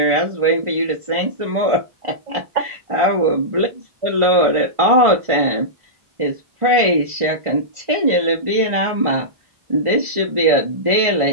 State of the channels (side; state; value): left; late; 1.5 ms